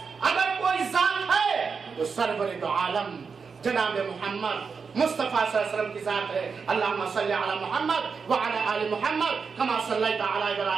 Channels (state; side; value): quieter; left; 5.4 dB